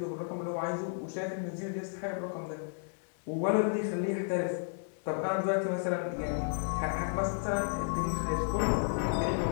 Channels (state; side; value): silent; right; digital silence